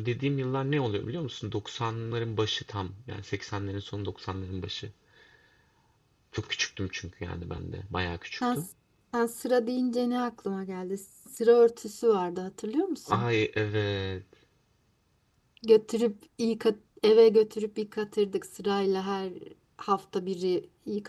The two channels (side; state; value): both; identical; correlation 1.00